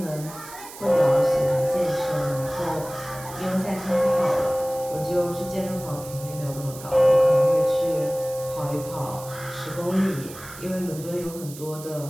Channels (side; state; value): right; noise; hiss, 15 dB below the sound